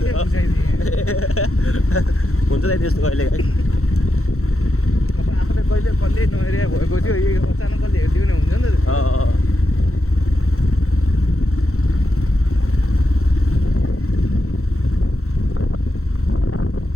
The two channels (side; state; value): right; late; 0.63 ms